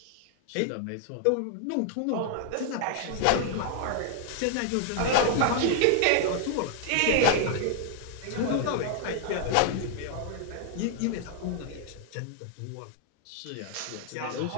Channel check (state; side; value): different; both; correlation 0.00